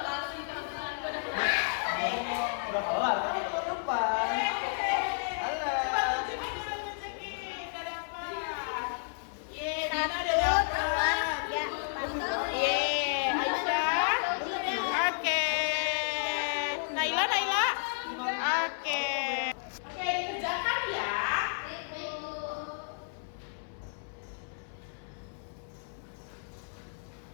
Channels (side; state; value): right; silent; 56 dB below the other